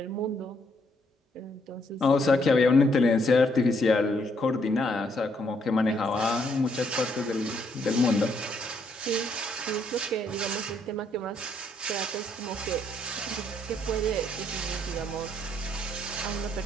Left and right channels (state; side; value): normal; both; correlation 0.71